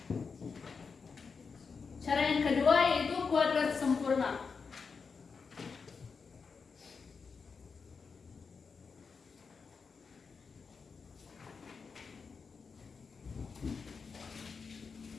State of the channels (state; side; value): quieter; right; 5.2 dB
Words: Cara yang kedua yaitu kuadrat sempurna.